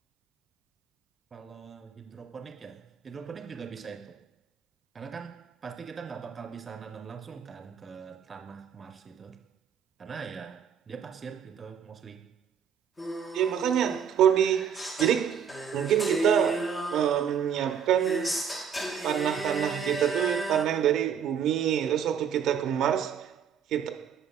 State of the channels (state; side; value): quieter; left; 7.8 dB